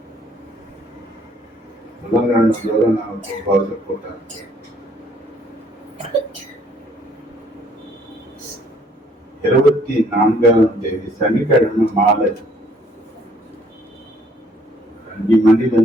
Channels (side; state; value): both; normal; correlation 0.63